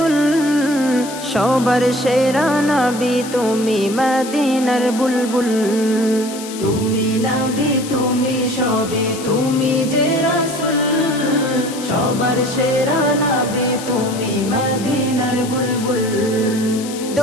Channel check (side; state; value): left; noise; hiss, 12 dB below the sound